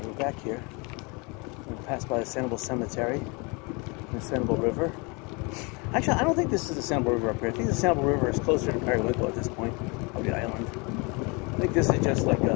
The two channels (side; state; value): right; quieter; 29.6 dB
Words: we're back here. We're going to pass by the Sanibel Cemetery and the Sanibel River. Actually, I don't think this is the Sanibel River up here. I think the Sanibel River is closer to Periwinkle at this point of the island. I think this is just like